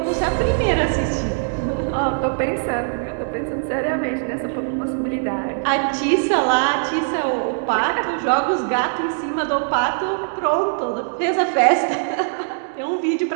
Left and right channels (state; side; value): silent; left; digital silence